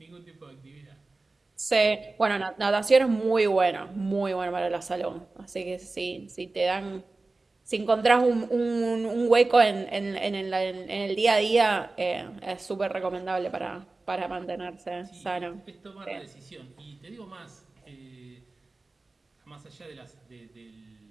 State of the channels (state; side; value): quieter; left; 3.4 dB